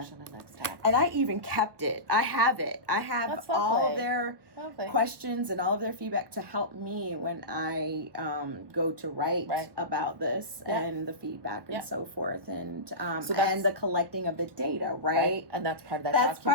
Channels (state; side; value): late; left; 1.1 ms